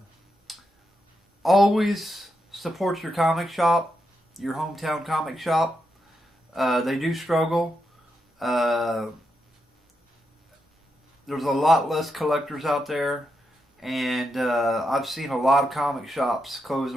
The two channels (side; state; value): both; normal; correlation 0.84